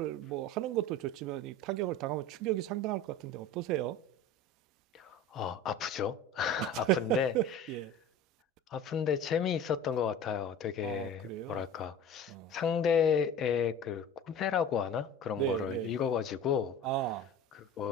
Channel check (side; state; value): both; normal; correlation 0.37